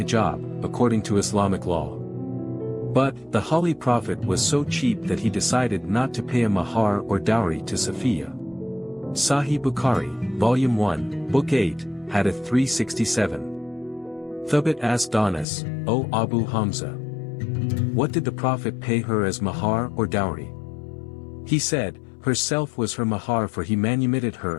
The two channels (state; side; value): drops out; right; at 15.5 s